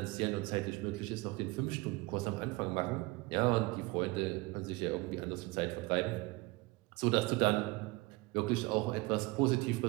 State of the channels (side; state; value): left; quieter; 23.5 dB